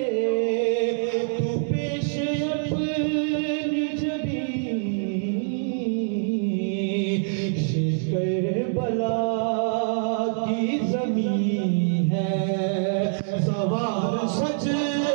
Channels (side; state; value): left; silent; digital silence